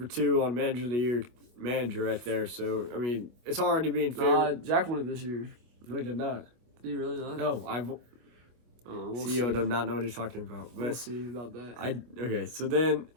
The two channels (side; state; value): left; late; 25 ms